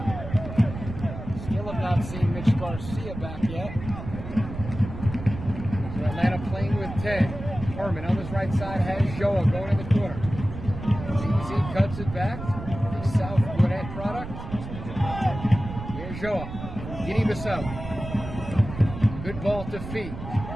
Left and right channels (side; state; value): right; noise; rumble, 9 dB below the sound